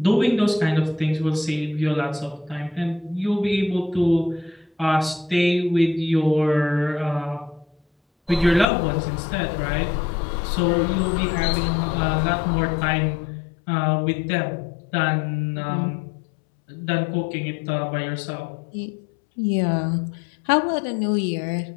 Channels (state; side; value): drops out; right; at 8.7 s